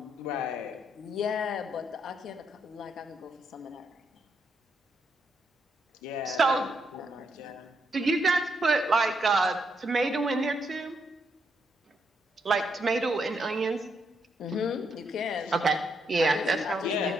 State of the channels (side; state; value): both; normal; correlation 0.78